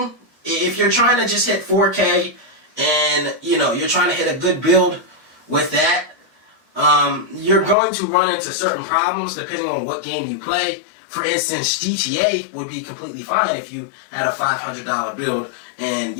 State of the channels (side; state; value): right; drops out; at 7.8 s